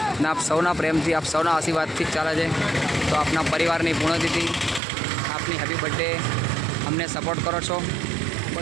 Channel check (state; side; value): drops out; left; at 4.8 s